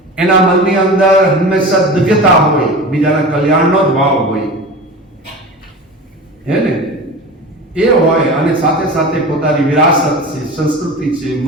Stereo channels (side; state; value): both; normal; correlation 0.32